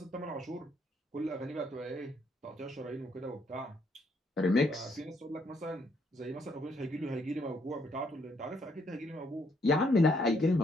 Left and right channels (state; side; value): normal; both; correlation 0.71